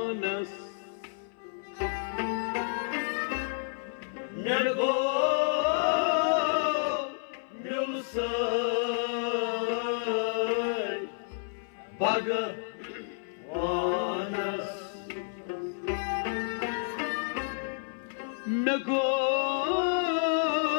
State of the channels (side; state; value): right; silent; 58 dB below the other